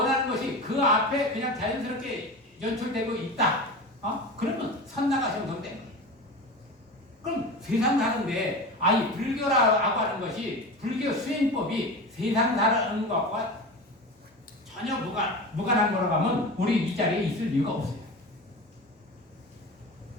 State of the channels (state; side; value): normal; both; correlation 0.29